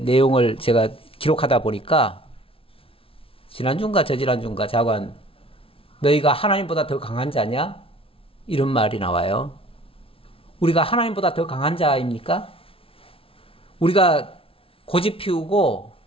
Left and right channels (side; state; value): right; late; 0.26 ms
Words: 내용을 제가 기록하다 보니까 지난주인가 저지난주인가 자관 너희가 하나님보다 더 강한 자냐? 이런 말이 나와요. 우리가 하나님보다 더 강한 자입니까? 우리가 고집 피우고